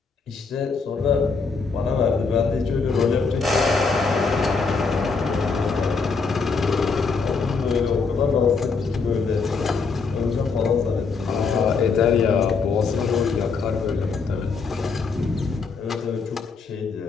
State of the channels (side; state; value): right; quieter; 4.8 dB